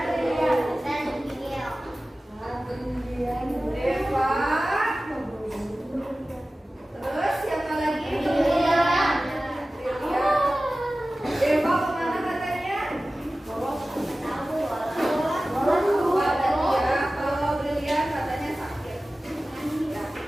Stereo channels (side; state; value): both; normal; correlation 0.96